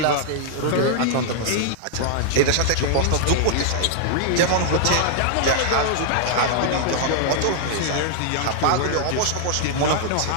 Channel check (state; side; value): different; both; correlation -0.01